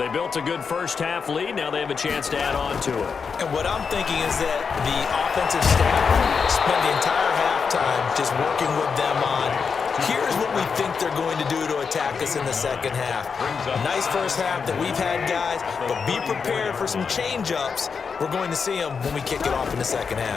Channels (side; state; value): right; quieter; 5.7 dB